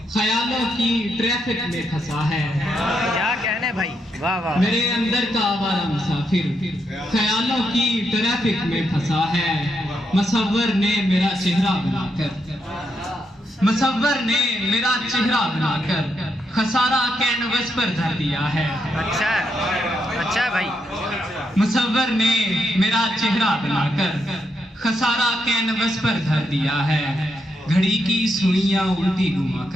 ख्यालों की ट्रैफिक में फंसा है। क्या कहने भाई, वाह वाह। मेरे अंदर का आवारा मुसाफिर ख्यालों की ट्रैफिक में फंसा है। मुसव्वर ने मेरा चेहरा बनाकर, मुसव्वर ने मेरा चेहरा बनाकर खसारा कैनवस पर धर दिया है। अच्छा है, अच्छा है भाई। मुसव्वर ने मेरा चेहरा बनाकर खसारा कैनवस पर धर दिया है। घड़ी की सुइयां उल्टी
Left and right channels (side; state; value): both; normal; correlation 0.80